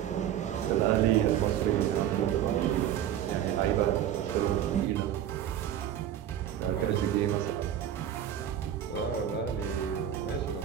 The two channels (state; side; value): quieter; left; 10.6 dB